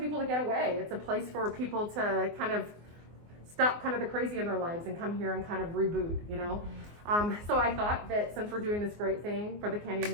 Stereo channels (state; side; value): late; left; 24 ms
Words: to get away. It's a place for people to kind of stop kind of the crazy in their lives and come here and kind of reboot, you know. So I thought that since we're doing this great thing for the